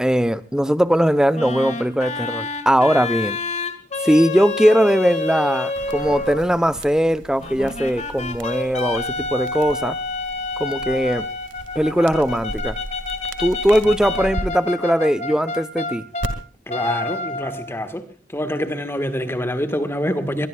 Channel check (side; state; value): both; normal; correlation 0.84